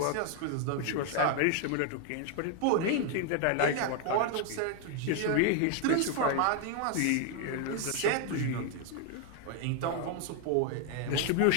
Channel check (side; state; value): both; different; correlation 0.00